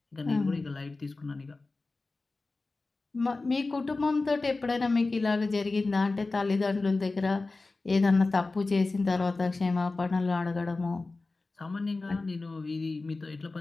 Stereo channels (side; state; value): right; quieter; 3.5 dB